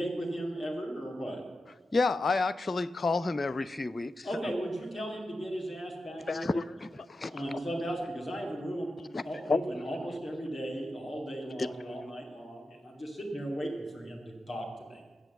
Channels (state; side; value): normal; both; correlation 0.90